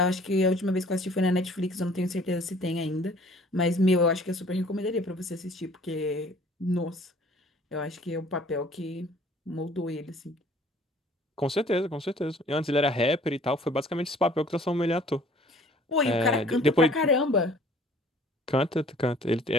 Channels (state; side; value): normal; both; correlation 0.53